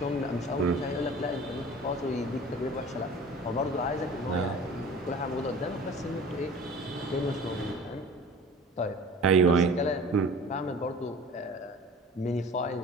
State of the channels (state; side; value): normal; both; correlation 0.43